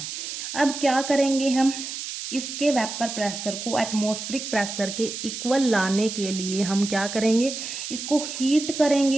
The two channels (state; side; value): noise; right; hiss, 7 dB below the sound